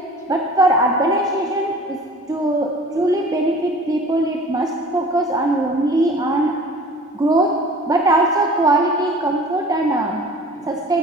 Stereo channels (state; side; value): normal; both; correlation 0.45